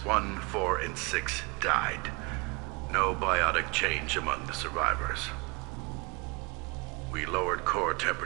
1, 4, and 6 died. No biotic change among the survivors. We lowered core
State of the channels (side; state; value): left; quieter; 28.2 dB